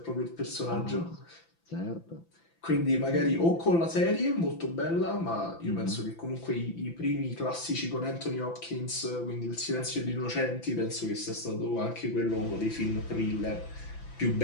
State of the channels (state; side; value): late; right; 5.9 ms